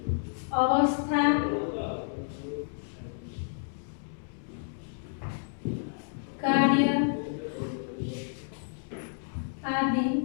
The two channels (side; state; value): right; silent; digital silence